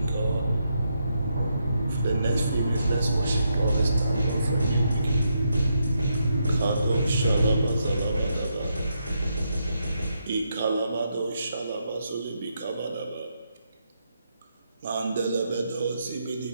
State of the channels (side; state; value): both; inverted; correlation -0.80